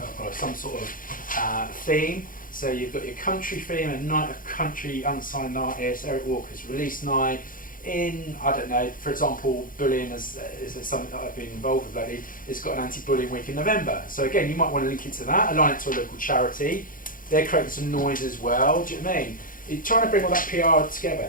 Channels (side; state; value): right; late; 0.40 ms